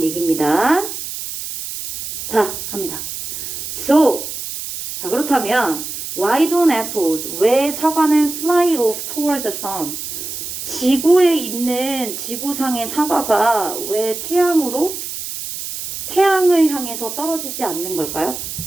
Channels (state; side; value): noise; right; hiss, 7 dB below the sound